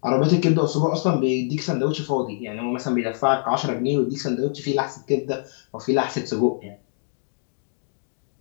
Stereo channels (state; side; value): silent; right; digital silence